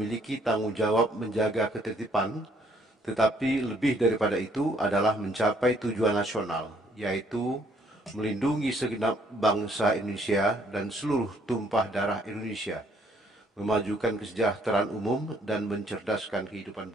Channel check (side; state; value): both; normal; correlation 0.66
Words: tanggung jawab menjaga ketertiban, tetapi lebih daripada itu adalah mencapai tujuan nasional, yaitu melindungi segenap bangsa Indonesia dan seluruh tumpah darah Indonesia, memajukan kesejahteraan umum dan mencerdaskan